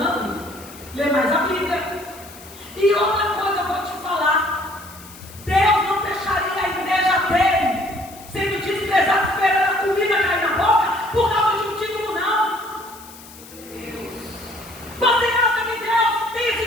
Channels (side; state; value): left; noise; hiss, 19 dB below the sound